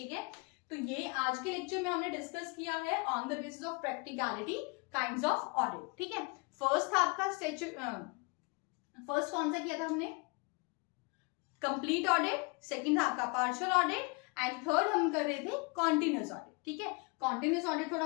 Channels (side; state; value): right; quieter; 31.1 dB